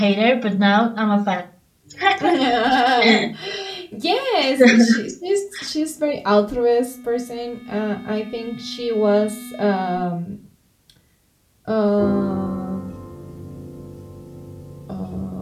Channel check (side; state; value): both; identical; correlation 1.00